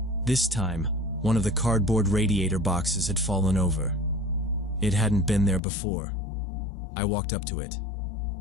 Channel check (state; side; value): drops out; right; at 5.6 s